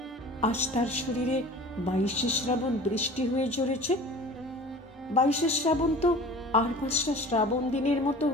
আজ তার শরীরে 22শে শ্রাবণ বৃষ্টি হয়ে ঝরেছে? 22শে শ্রাবণ তো আর 5টা শ্রাবণ দিনের মতো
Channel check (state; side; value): normal; both; correlation 0.41